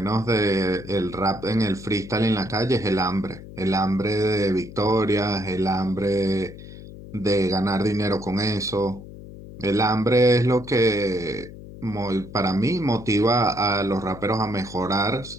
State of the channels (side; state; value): left; noise; hum, 15 dB below the sound